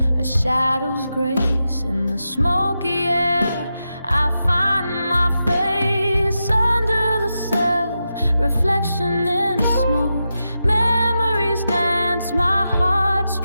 a shadow's grace. In the smoky air, I find my face. Under the self-reflection in smoke, memories dance, my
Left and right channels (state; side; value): inverted; both; correlation -0.89